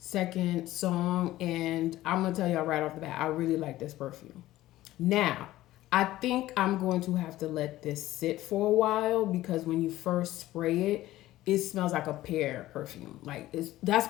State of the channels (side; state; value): right; quieter; 15.6 dB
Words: song, and I'm gonna tell y'all right off the bat, I really like this perfume. Now, I think I'm going to have to let this sit for a while because when you first spray it, it smells like a pear perfume. Like that's